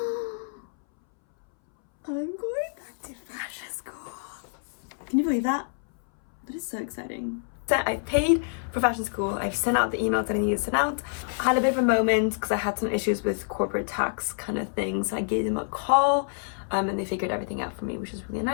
I'm going back to fashion school. Can you believe that? That is so exciting. So I paid for fashion school. I've sent out the emails that I needed to send out. I had a bit of a moment because I had some issues with corporate tax kind of things. I gave them a call and they figured everything out for me, which is really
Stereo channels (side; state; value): right; silent; 60 dB below the other